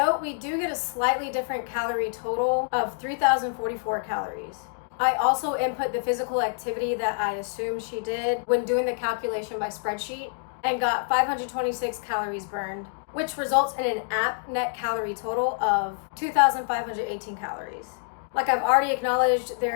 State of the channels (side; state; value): right; silent; digital silence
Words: we do get a slightly different calorie total of 3,044 calories. I also input the physical activity that I assumed she did when doing the calculation by spreadsheet and got 526 calories burned, which results in an app net calorie total of 2,518 calories. Like I've already acknowledged,